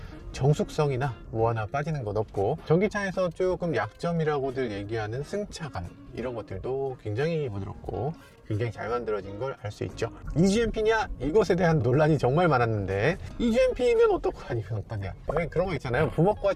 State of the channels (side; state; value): both; identical; correlation 1.00